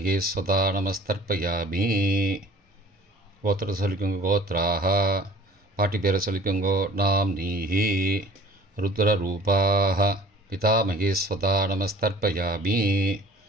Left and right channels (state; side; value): normal; both; correlation 0.48